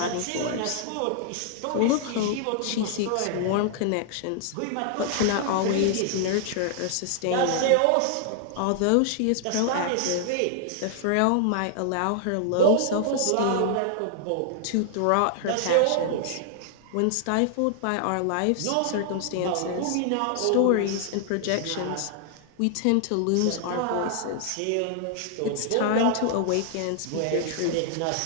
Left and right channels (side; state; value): both; different; correlation -0.01